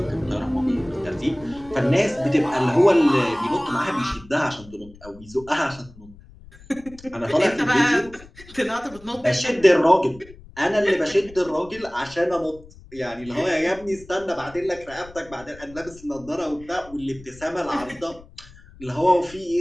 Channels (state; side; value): noise; left; rumble, 21 dB below the sound